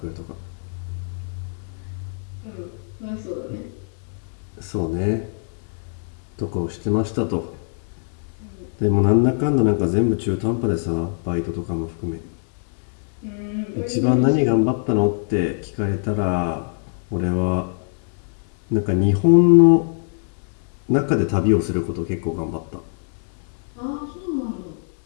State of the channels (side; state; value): right; silent; digital silence